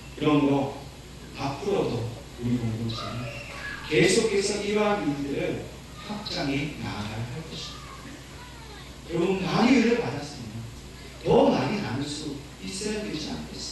그러므로 앞으로도 우리 공동체는 계속해서 이러한 일들을 확장해 나아가야 할 것입니다. 여러분, 많이 은혜를 받았으면 더 많이 나눌 수 있어야 되지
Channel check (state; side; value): identical; both; correlation 1.00